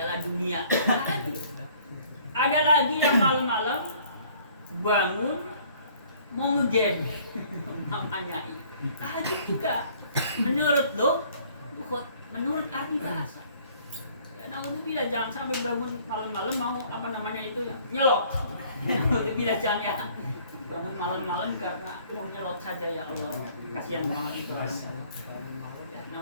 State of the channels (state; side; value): inverted; both; correlation -0.57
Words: Dunia. Ada lagi yang malam-malam bangun mau ngegame. Namanya ini tahajud juga. Menurut lughat, menurut arti bahasa. Naudzubillah, jangan sampai bangun malam-malam mau nyelok. Naudzubillah, jangan ya. Bangun malam-malam karena mau nyelok saja, ya Allah. Kasihan banget itu. Ya,